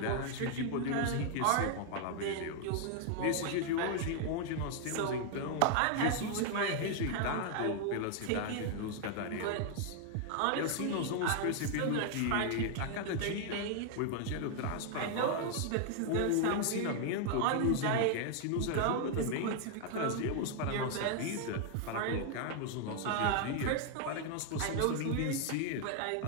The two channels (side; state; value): both; different; correlation 0.00